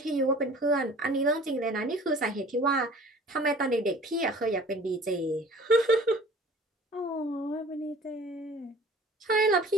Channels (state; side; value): normal; both; correlation 0.48